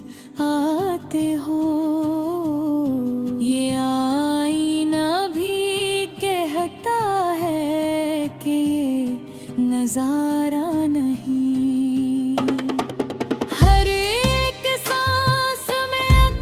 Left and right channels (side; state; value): both; identical; correlation 1.00